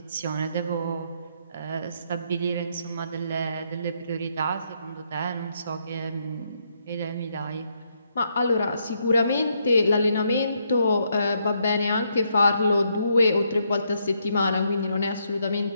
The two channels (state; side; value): inverted; both; correlation -0.75